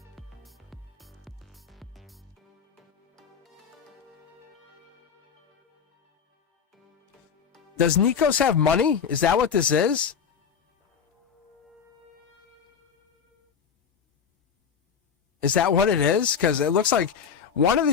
Does Nikos have money? Is that what this is? Is that what it is? Because it looks like one of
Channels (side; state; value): right; quieter; 6.9 dB